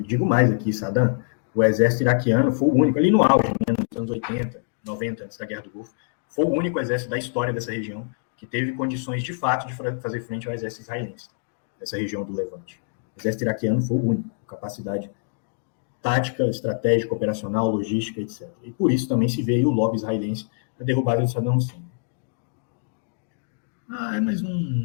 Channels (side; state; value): right; silent; digital silence